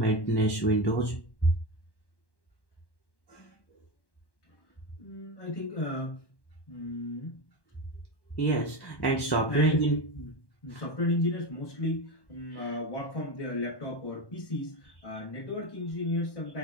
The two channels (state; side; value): late; right; 1.1 ms